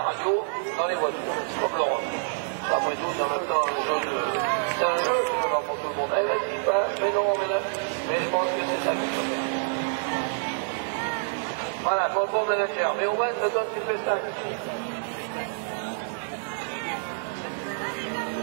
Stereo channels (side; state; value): left; silent; digital silence